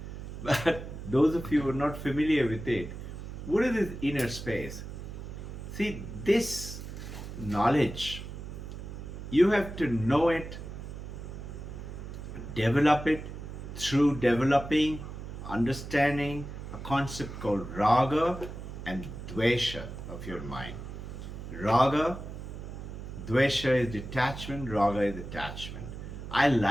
But those of you who are not familiar with it, what is this inner space? See, this knowledge, you have to know it, develop it through developing, understanding a concept called raga and dvesha of your mind. Raga, dvesha is detachment, raga is attachment. I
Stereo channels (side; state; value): right; noise; hum, 9 dB below the sound